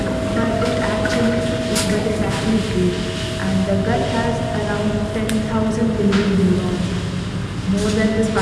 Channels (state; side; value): identical; both; correlation 1.00